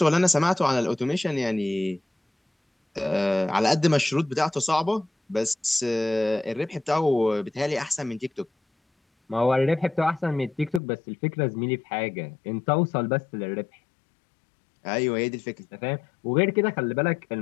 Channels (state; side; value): drops out; right; at 10.8 s